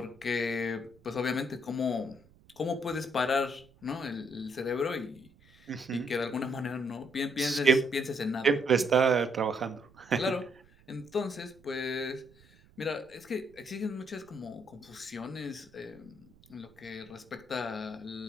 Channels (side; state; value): right; noise; rumble, 27 dB below the sound